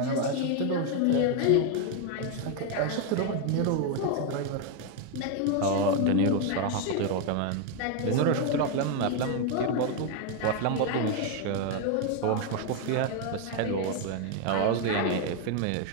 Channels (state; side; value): different; both; correlation 0.01